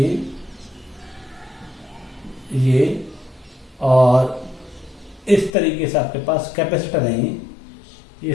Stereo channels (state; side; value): drops out; right; at 5.5 s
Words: और इस तरीके से आपके पास कैपेसिटर है, ये